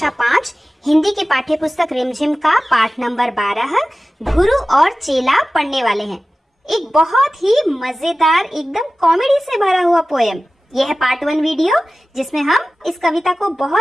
5 हिंदी की पाठ्य पुस्तक रिमझिम का पाठ नंबर 12 गुरु और चेला पढ़ने वाले हैं। एक बहुत ही मजेदार एकदम कॉमेडी से भरा हुआ पोयम। यह है पार्ट 1 वीडियो जिसमें हम इस कविता को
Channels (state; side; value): normal; both; correlation 0.96